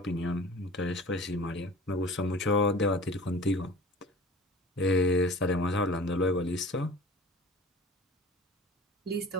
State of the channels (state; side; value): normal; both; correlation 0.41